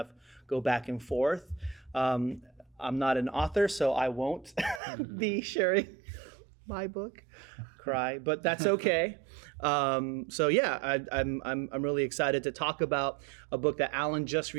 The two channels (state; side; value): drops out; left; at 4.8 s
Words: go back and forth. I'm not an author, so I won't be sharing my book, but that's okay. I'm really excited to talk about a book that Alan just